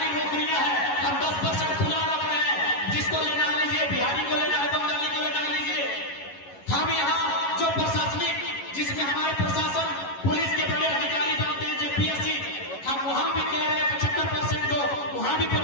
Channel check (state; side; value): late; right; 11 ms